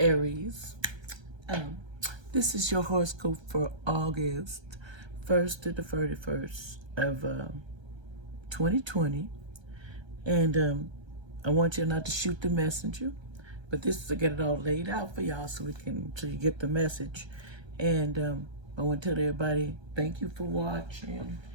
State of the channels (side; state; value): left; late; 1.3 ms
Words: Aries. Um, this is your horoscope for August 1st to the 31st of 2020. And I want you not to shoot the messenger, but this is to get it all laid out for y'all so you get the message. And I want to tell everybody thank you for watching